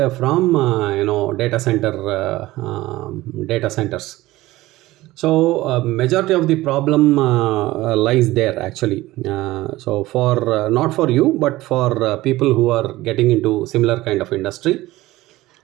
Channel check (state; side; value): quieter; left; 17.8 dB